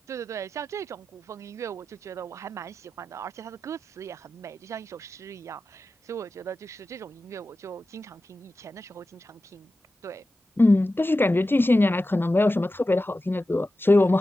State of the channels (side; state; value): both; normal; correlation 0.93